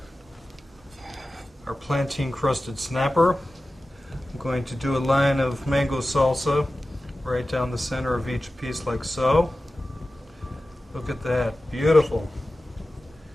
our plantain crusted snapper. I'm going to do a line of mango salsa right down the center of each piece like so. Look at that, beautiful.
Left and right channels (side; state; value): both; normal; correlation 0.95